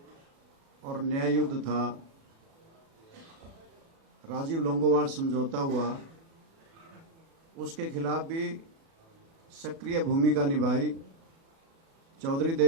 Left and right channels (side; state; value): left; late; 36 ms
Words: और न्याय युद्ध था, राजीव लोंगोवाल समझौता हुआ, उसके खिलाफ भी सक्रिय भूमिका निभाई। चौधरी